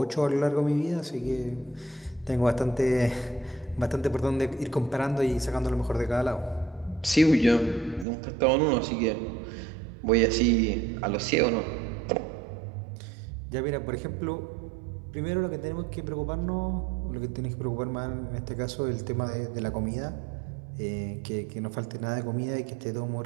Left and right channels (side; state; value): left; drops out; at 8.1 s